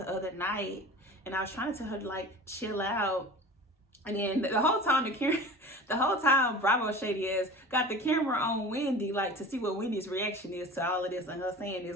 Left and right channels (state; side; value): normal; both; correlation 0.37